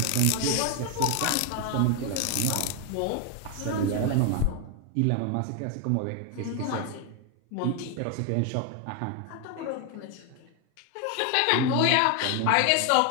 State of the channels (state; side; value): different; both; correlation 0.01